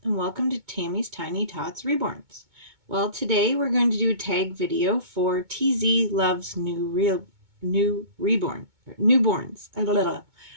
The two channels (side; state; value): left; late; 2.2 ms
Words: and welcome to Tammy's Tiny Tots Reborns. Well, today we're going to do a tag video for TZ Loves Newborns.